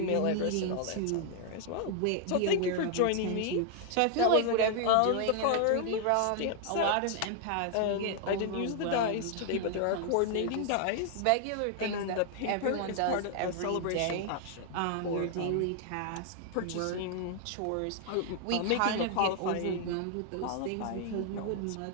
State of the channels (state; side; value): different; both; correlation 0.00